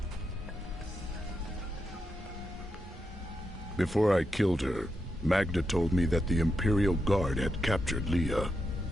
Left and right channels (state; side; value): normal; both; correlation 0.85